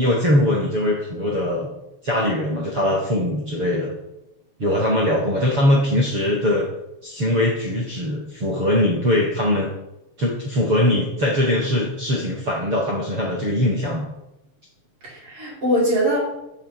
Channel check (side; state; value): left; late; 7.0 ms